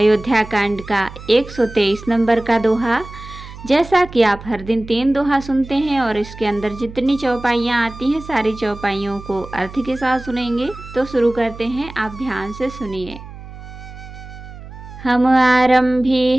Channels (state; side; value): noise; right; hum, 15 dB below the sound